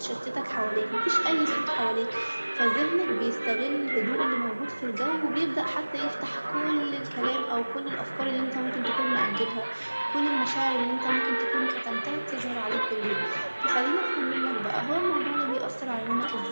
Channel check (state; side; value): inverted; both; correlation -1.00